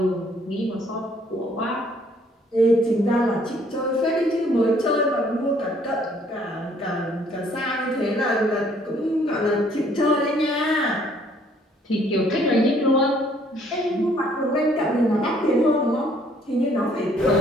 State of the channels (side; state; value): both; normal; correlation 0.62